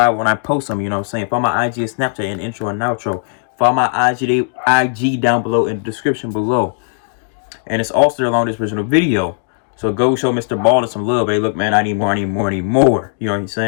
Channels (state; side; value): silent; right; digital silence